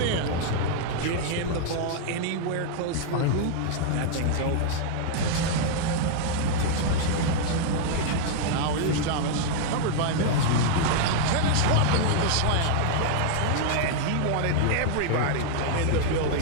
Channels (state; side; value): different; both; correlation 0.00